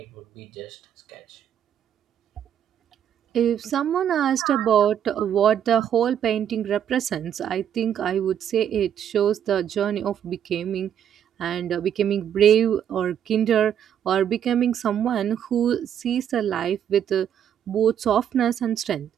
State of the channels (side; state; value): left; quieter; 9.4 dB